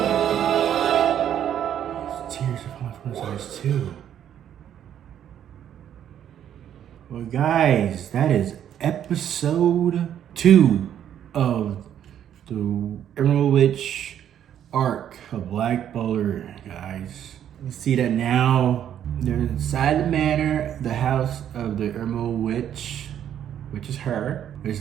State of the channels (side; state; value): left; quieter; 10.0 dB